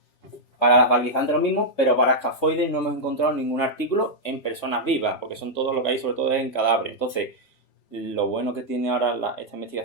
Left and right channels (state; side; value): late; right; 3.6 ms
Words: Para las valguizantes lo mismo, pero para escafoides no hemos encontrado ningún artículo en personas vivas, porque son todo lo que hay, sobre todo es en cadáveres. Entonces, lo bueno que tiene ahora esta